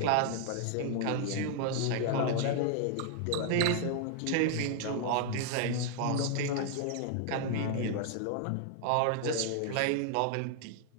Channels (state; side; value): different; both; correlation 0.00